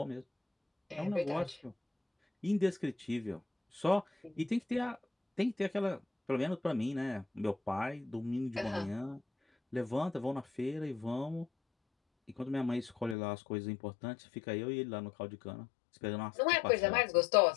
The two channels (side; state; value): right; drops out; at 13.2 s